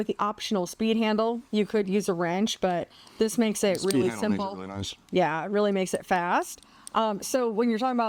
the optional speed handle. You could use a wrench, but this makes it really simple. Makes it really nice. Yeah, it really makes it fast. So when you're talking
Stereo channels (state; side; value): identical; both; correlation 1.00